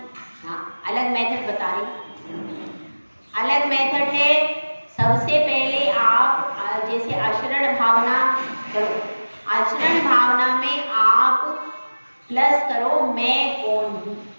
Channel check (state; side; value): inverted; both; correlation -1.00